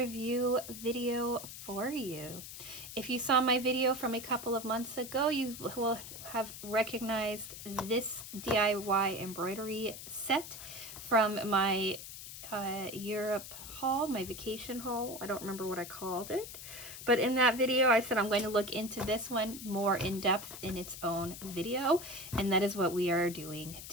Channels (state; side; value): noise; left; hiss, 11 dB below the sound